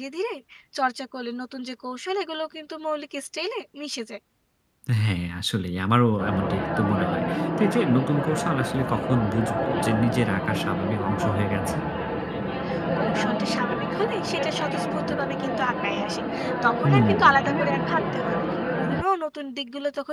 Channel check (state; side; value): identical; both; correlation 1.00